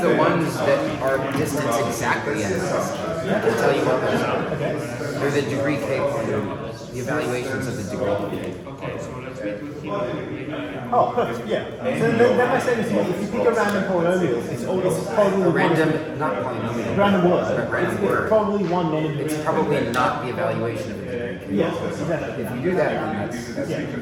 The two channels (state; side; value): identical; both; correlation 1.00